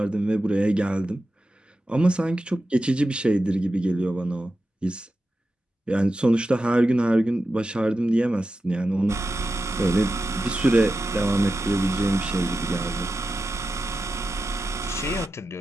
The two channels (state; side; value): normal; both; correlation 0.91